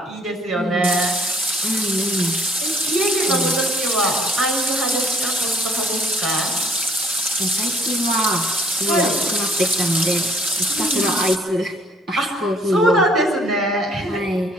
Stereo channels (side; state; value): both; normal; correlation 0.60